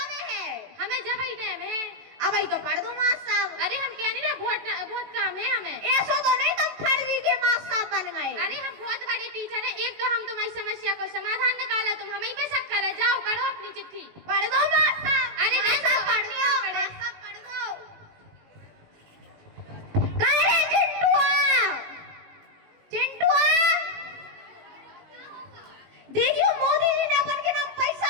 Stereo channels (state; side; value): late; left; 19 ms